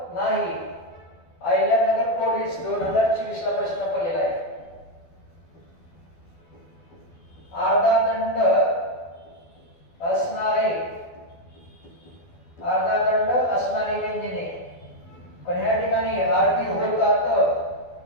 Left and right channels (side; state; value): right; late; 12 ms